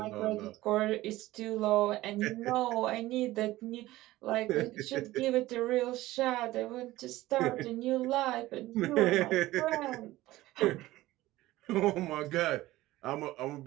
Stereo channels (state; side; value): quieter; left; 17.1 dB